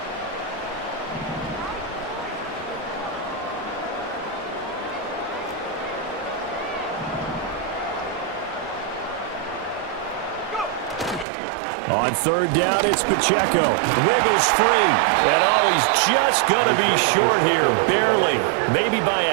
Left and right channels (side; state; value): left; drops out; at 11.2 s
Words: On 3rd down, it's Pacheco. Wiggles free. And oh, he's just going to be short here. Barely. Maybe by